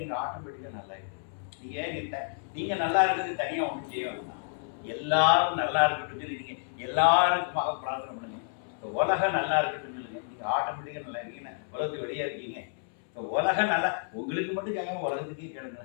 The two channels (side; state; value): right; silent; 58 dB below the other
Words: நீங்கள் ஆட்டோமேட்டிக்காக நல்லா இருக்கு. நீங்கள் நல்லா இருக்கிறது தனியாக ஒன்றும் செய்ய வேண்டாம். எல்லாரும் நல்லா இருக்கட்டும் சொல்லி நீங்கள் எல்லாருக்குமாக பிரார்த்தனை பண்ணுங்க. இப்போ உலகம் நல்லா இருக்கட்டும் சொல்லுங்க. நீங்கள் ஆட்டோமேட்டிக்காக நல்லா இருக்கீங்கன்னா உலகத்துக்கு வெளியே இருக்கீங்க. இப்போ உலகம் நல்லா உங்களுக்கு மட்டும் கேட்காம உலகத்துக்கே கேளுங்க.